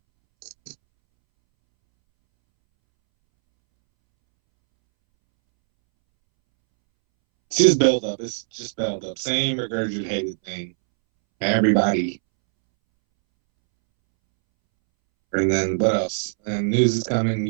It's just build up. It's just build up. Same regurgitated thing. Everybody. And then what else? And news is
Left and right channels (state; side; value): silent; left; 64 dB below the other